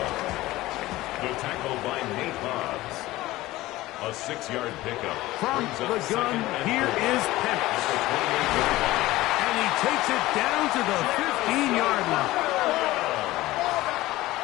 The tackle by Nate Hobbs. A 6-yard pickup. From the gun, here is Penix. And he takes it down to the 15-yard line.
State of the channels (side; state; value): right; quieter; 17.7 dB